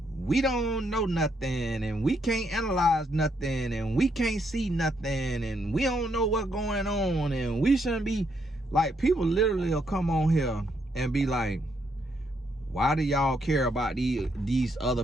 we don't know nothing, and we can't analyze nothing, and we can't see nothing, and we don't know what's going on, and we shouldn't be like, people literally will come on here and be like, why do y'all care about these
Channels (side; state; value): both; normal; correlation 0.75